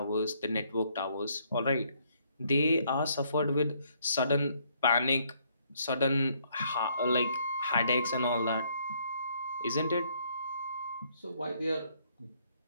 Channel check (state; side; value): inverted; both; correlation -0.68